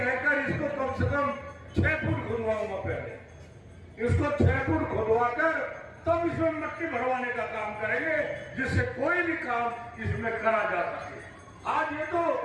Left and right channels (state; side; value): identical; both; correlation 1.00